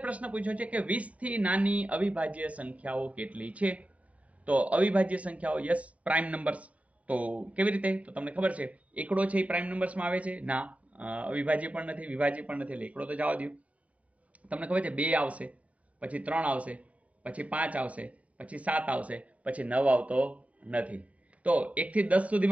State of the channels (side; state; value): left; late; 0.068 ms